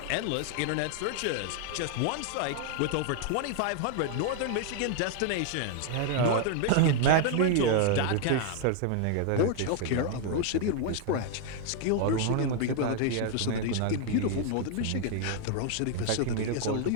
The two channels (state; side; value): different; both; correlation 0.00